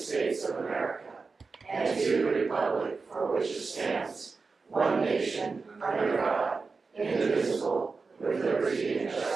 of America and to the republic for which it stands, one nation, under God, indivisible, with liberty and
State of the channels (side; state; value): left; quieter; 4.4 dB